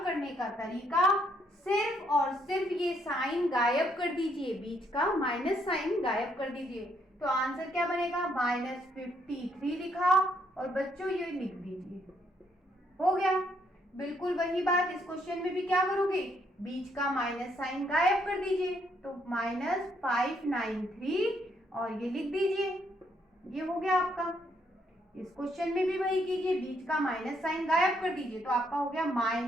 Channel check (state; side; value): normal; both; correlation 0.72